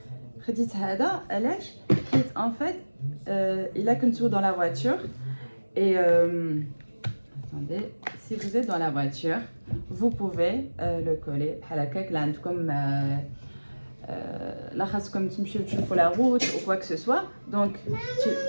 en fait, il a qu'un tour dans la voiture. Et attendez, si vous êtes dans la voiture, vous pouvez le coller à la caque comme là خاصكم تمشيو تشوفوا la route ou quoi que ce soit. Donc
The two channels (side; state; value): both; inverted; correlation -1.00